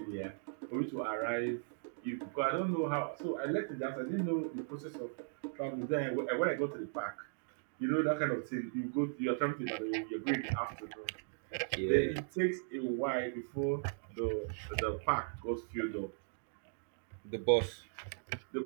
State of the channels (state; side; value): silent; left; digital silence